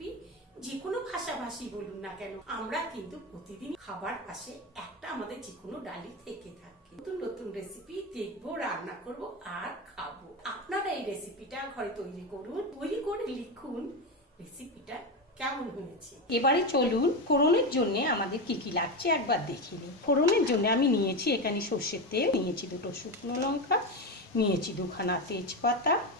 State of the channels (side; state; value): both; normal; correlation 0.16